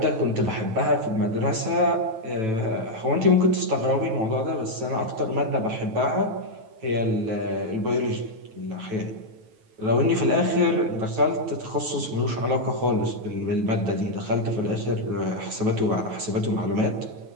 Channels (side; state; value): left; late; 9.1 ms